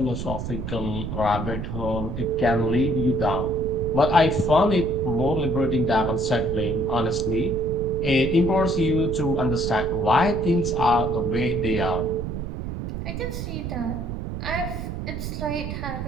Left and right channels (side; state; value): right; noise; rumble, 5 dB below the sound